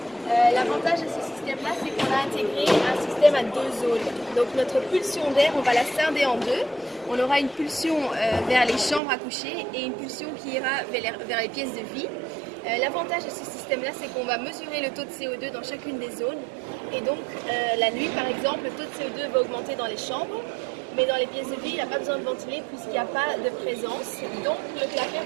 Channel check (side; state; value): left; drops out; at 9.0 s